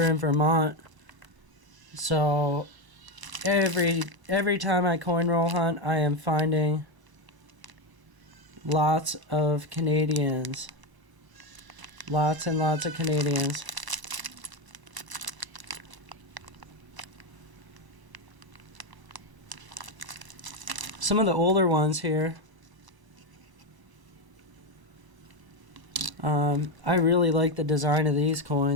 in Vermont. So every time I coin roll hunt, I am finding lots of Canadians. Lots and lots of Canadians. Some of the older ones here. I really like the design of these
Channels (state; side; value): late; left; 1.0 ms